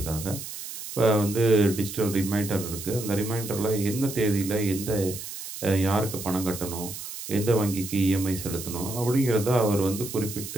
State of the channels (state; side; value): noise; right; hiss, 10 dB below the sound